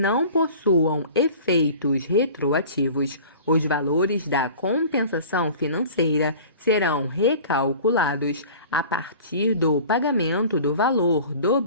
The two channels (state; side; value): inverted; both; correlation -0.42